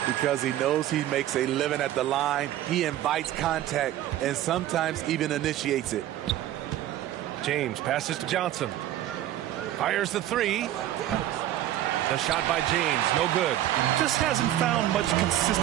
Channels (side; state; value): left; quieter; 13.1 dB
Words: Because he knows he makes a living at the line. He invites contact and sometimes even initiates it. James passes to Johnson. Fires the 3. The shot by James, no good. Just hasn't found much